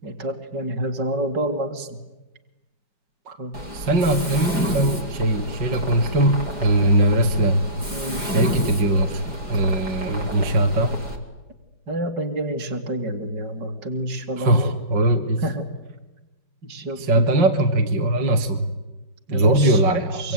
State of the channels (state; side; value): late; left; 4.9 ms